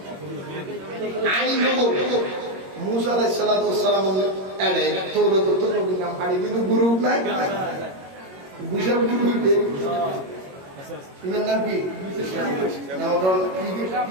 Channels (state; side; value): late; left; 21 ms